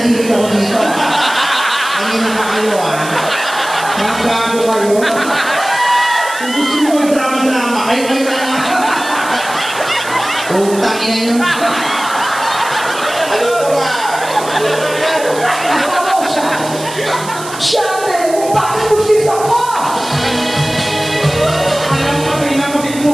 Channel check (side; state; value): right; noise; hiss, 13 dB below the sound